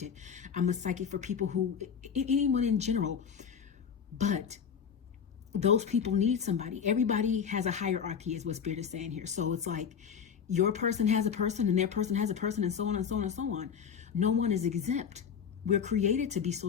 I'm a psychic for people who, anyone in general. But those people need somebody. Everybody has a hierarchy, is what Spirit is saying here. So it's like, your person has a person and their person has a person, and so on and so on and so on. No one is exempt. We're created to be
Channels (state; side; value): quieter; right; 7.2 dB